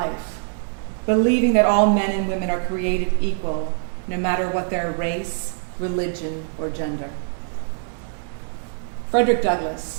believing that all men and women are created equal, no matter what their race, religion, or gender. Frederick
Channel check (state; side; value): silent; left; digital silence